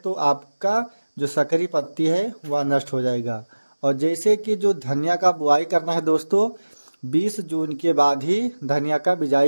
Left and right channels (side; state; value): both; inverted; correlation -1.00